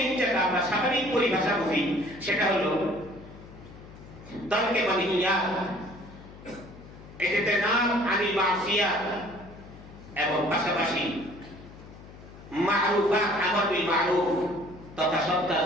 যেটা আমরা স্বাভাবিক পরিভাষা বুঝি, সেটা হলো তারকে মানহিয়াত, এটাতে নাম আনিল মাসিয়াত, এবং পাশাপাশি মারুফাত, আমর বিল মারুফ তথা সৎ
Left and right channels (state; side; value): noise; left; hum, 18 dB below the sound